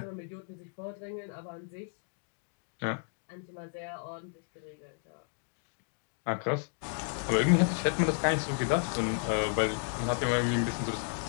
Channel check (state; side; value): silent; right; digital silence